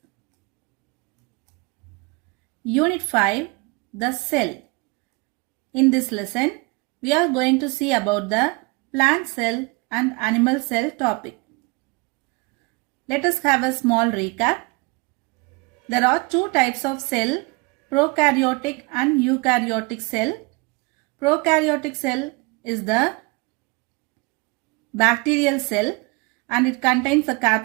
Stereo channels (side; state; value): left; quieter; 27.6 dB